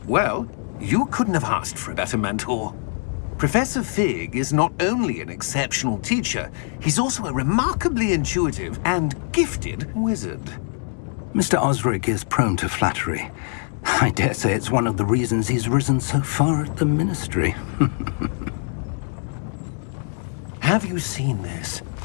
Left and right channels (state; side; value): silent; right; 56 dB below the other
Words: Well, you couldn't have asked for a better mentor. Professor Fig is not only an exceptional teacher, he's also a remarkably intuitive and gifted wizard. Mr. Osric is prone to flattery. I dare say it's one of the reasons he's risen so far at the Ministry. Have you seen this?